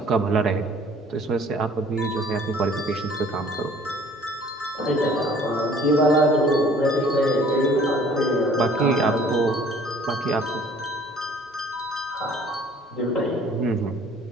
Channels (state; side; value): normal; both; correlation 0.53